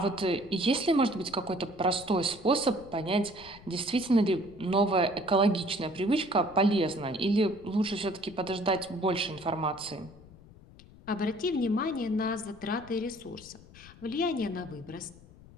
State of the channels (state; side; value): noise; left; rumble, 21 dB below the sound